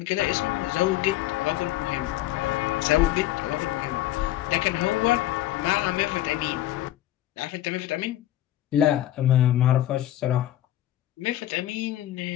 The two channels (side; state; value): right; quieter; 13.7 dB